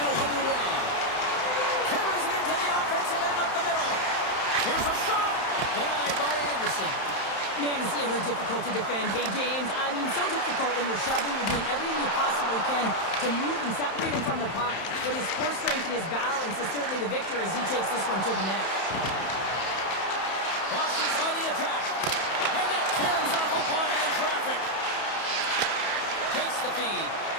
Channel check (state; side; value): late; right; 31 ms